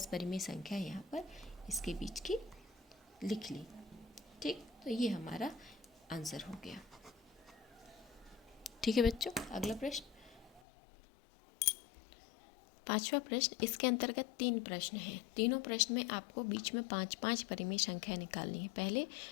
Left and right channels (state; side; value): drops out; right; at 10.6 s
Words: परिमेय संख्या यहाँ पर इसके बीच की लिख ली। ठीक। तो ये हमारा आंसर हो गया। ठीक है बच्चों, अगला प्रश्न, 5वां प्रश्न। इसके अंतर्गत 3 प्रश्न हैं। तीनों प्रश्न में आपको बीच में 5-5 परिमेय संख्या निकालनी है। पहले